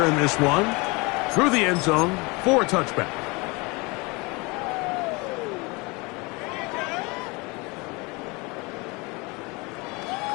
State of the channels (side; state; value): right; quieter; 26.7 dB